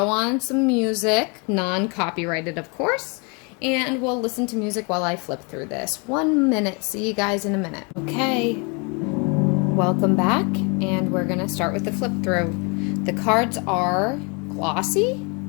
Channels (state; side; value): quieter; right; 32.6 dB